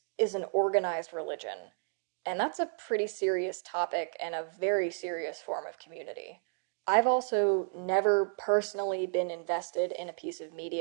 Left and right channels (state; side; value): silent; left; 56 dB below the other